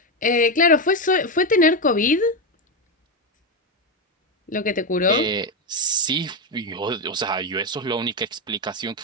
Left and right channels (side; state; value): both; normal; correlation 0.08